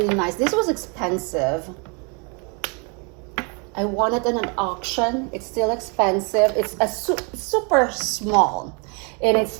nice. This was expensive. I won it in an auction. It's still expensive. It's a super small, and it's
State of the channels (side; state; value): left; quieter; 34.6 dB